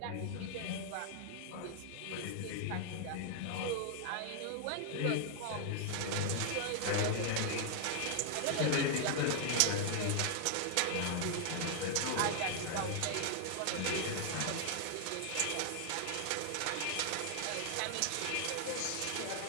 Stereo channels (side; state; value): both; different; correlation 0.00